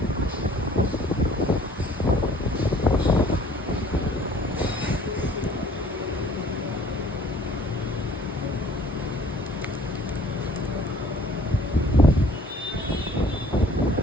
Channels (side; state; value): both; normal; correlation 0.54